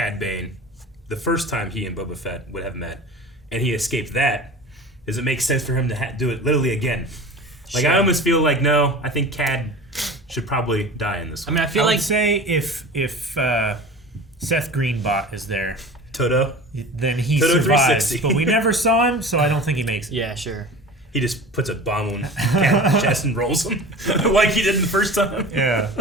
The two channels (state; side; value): normal; both; correlation 0.36